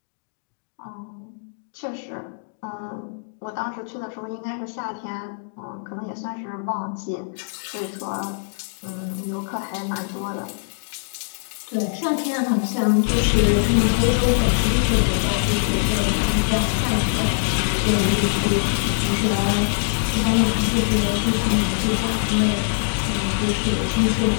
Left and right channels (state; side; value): silent; right; digital silence